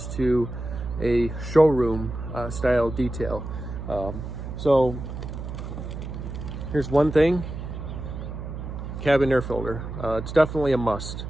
to a showroom style detail. So here's one thing: cabin air filter. It's definitely a must.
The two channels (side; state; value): right; noise; hum, 7 dB below the sound